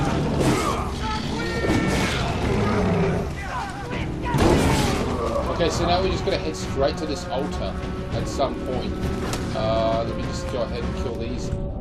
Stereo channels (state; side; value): identical; both; correlation 1.00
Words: Okay, so now we're just going to head straight to this altar at some point. Let me just go ahead and kill these